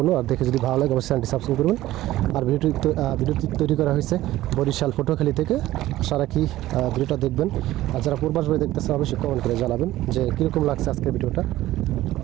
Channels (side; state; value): left; quieter; 15.5 dB